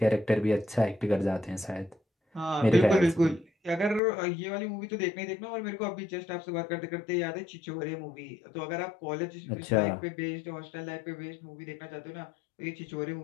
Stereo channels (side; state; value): right; drops out; at 4.0 s